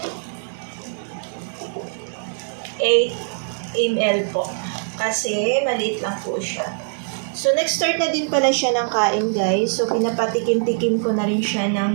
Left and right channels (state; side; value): silent; left; digital silence